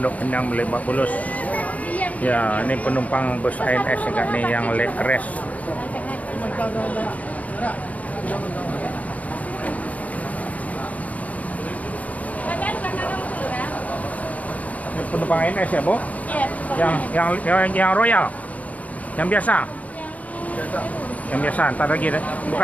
Pinang Lebak Bulus. Ya, ini penumpang bus ANS nih yang leg rest. Ini penumpang ANS ya, Bu? Iya. Yang Royal. Yang biasa. Yang biasa, entar lagi deh.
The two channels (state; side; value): late; right; 0.071 ms